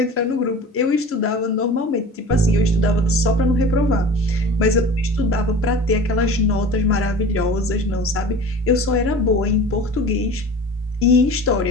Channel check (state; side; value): normal; both; correlation 0.38